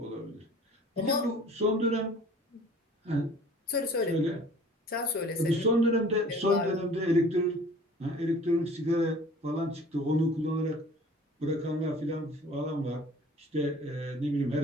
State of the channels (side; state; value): both; normal; correlation 0.48